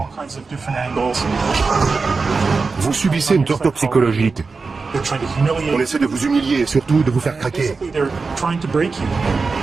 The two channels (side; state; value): left; quieter; 4.4 dB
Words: Vous subissez une torture psychologique. On essaie de vous humilier et surtout de vous faire craquer.